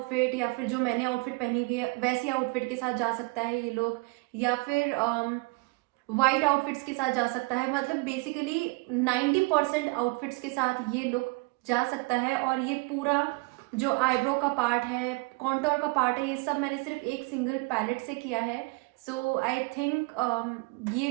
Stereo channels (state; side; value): quieter; left; 26.7 dB